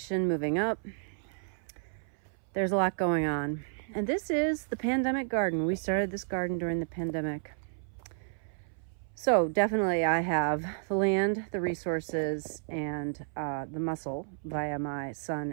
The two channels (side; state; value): left; silent; 57 dB below the other